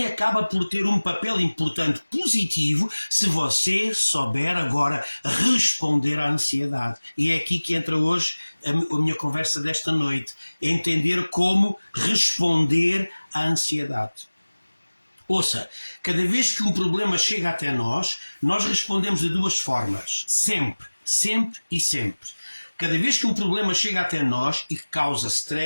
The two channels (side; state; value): both; inverted; correlation -1.00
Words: acaba por ter um papel importante positivo se você souber agora responder à ansiedade. E é aqui que entra hoje a minha conversa desta noite. Entender como responder à ansiedade. Ouça, cada vez que um problema chega até nós respondemos de duas formas. Sempre, sempre e sempre. Cada vez que um problema chega até nós e que causa